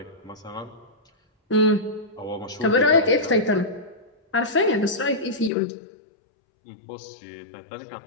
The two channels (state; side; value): drops out; right; at 5.5 s